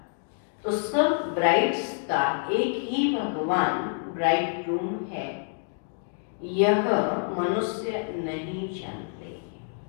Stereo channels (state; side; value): silent; right; 60 dB below the other